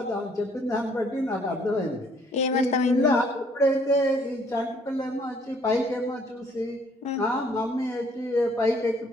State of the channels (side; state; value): both; normal; correlation 0.63